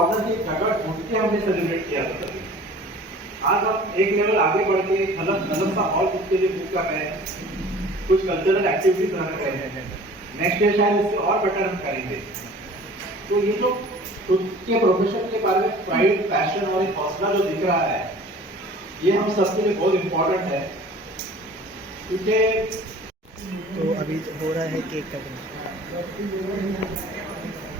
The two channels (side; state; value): both; normal; correlation 0.46